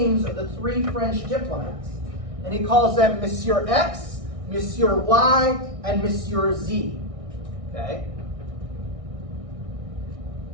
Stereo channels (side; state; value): left; late; 1.6 ms